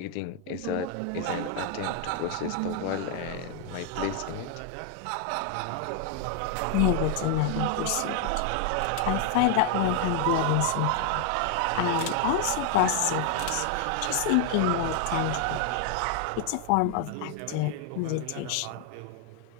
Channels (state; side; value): different; both; correlation 0.00